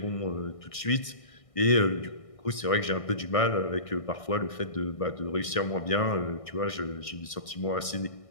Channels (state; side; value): late; right; 1.6 ms